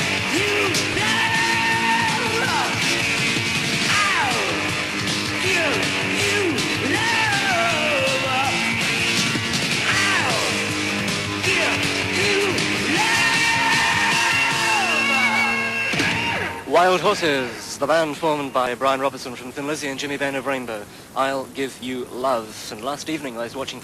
you love. I'll give you love. I'll give you love. Wild Horses, the band formed by Brian Robertson from Thin Lizzy and Jimmy Bain of Rainbow. I'll Give You Love. And last evening I was watching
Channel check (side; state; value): both; identical; correlation 1.00